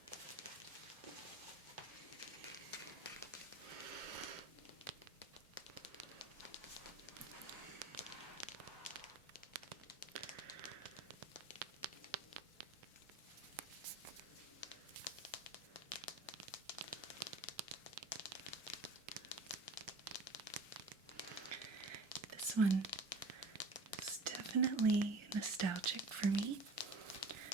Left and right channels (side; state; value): left; quieter; 3.1 dB